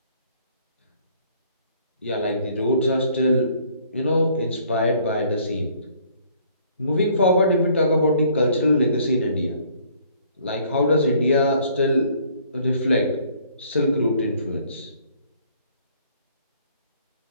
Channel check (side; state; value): both; inverted; correlation -0.60